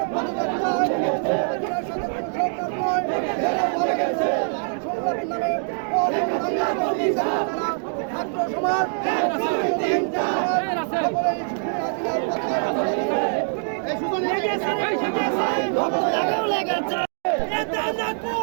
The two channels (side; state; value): left; silent; digital silence